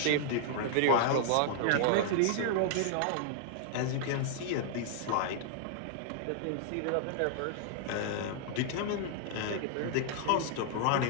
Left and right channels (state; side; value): different; both; correlation -0.01